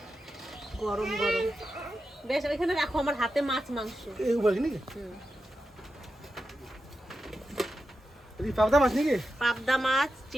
গরম গরম। বেশ, ওইখানে রাখো, আমার হাতে মাছ মাংস। এই বলি নাকি হুম। এই পাবদা মাছ নাকি? পাবদা মাছ,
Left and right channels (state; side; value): normal; both; correlation 0.89